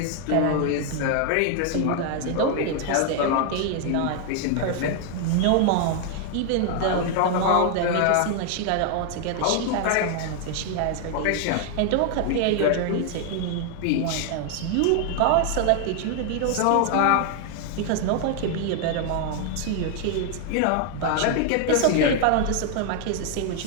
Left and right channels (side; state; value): both; different; correlation 0.00